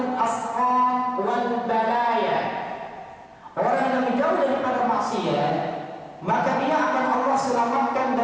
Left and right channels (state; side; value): identical; both; correlation 1.00